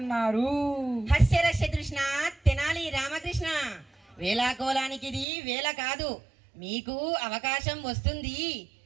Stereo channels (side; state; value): left; drops out; at 5.2 s